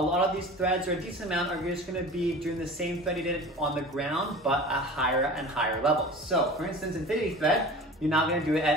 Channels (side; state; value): both; normal; correlation 0.38